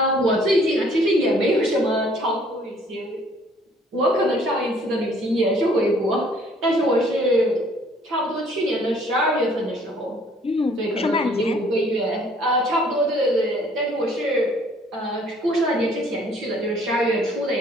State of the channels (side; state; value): both; normal; correlation 0.59